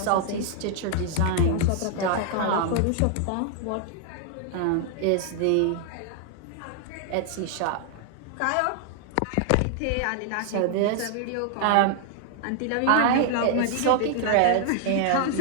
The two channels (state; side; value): different; both; correlation 0.00